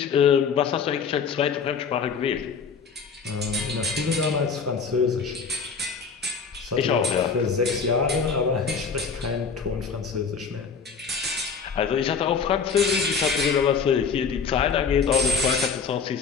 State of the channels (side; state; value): right; quieter; 5.7 dB